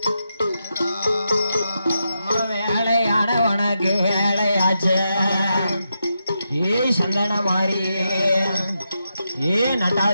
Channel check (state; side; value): inverted; both; correlation -0.86